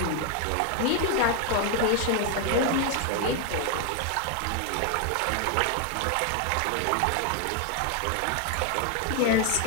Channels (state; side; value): different; both; correlation 0.01